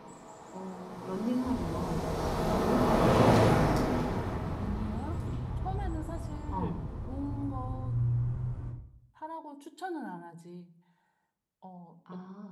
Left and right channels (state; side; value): identical; both; correlation 1.00